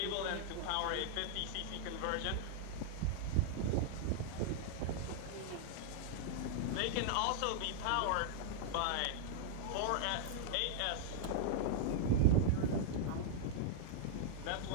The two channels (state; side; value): different; both; correlation 0.00